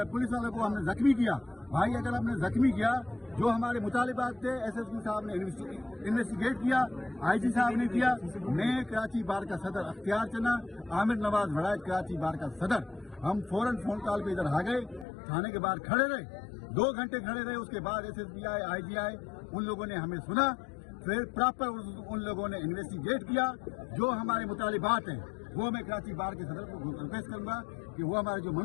पुलिस वाले को हमने जख्मी किया। भाई अगर हमने जख्मी किया, जो हमारे मुतालिबात थे एसएसपी साहब ने इन्वेस्टिगेट किया, आईजी साहब ने किया। मैं कराची बार का सदर अख्तियार चना, आमिर नवाज वड़ायत कराची बार का सदर, हम फौरन फोन कॉल पे इधर आ गए, थाने के बाहर खड़े रहे, 2 घंटे खड़े रहे। उसके बाद एसएसपी आए, आईजी आए, उन लोगों ने हमें सुना, फिर प्रॉपर उन लोगों ने इन्वेस्टिगेट किया। जो हमारे मुतालिबात हैं वो मैं कराची बार के सदर को रिक्वेस्ट करूंगा कि वो हमारे जो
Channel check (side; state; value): right; drops out; at 15.1 s